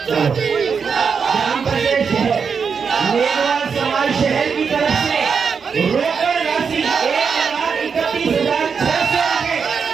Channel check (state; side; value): quieter; left; 6.0 dB